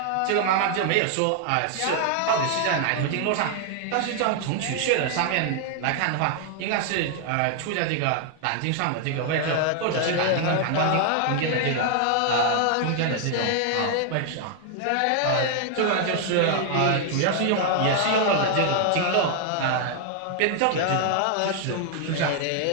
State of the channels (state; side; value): different; both; correlation 0.00